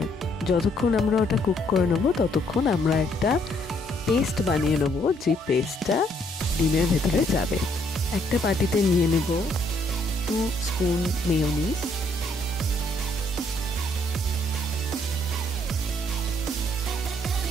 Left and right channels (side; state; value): both; normal; correlation 0.69